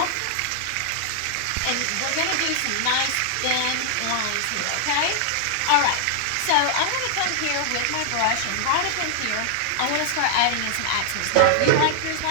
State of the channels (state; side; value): different; both; correlation -0.01